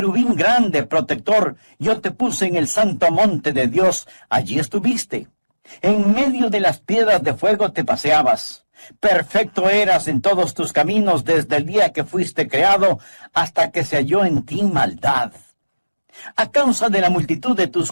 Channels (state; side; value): inverted; both; correlation -1.00